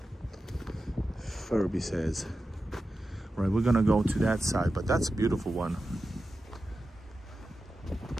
Furby says. Right, we're gonna go to that side, but that's a beautiful one.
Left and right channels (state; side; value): normal; both; correlation 0.92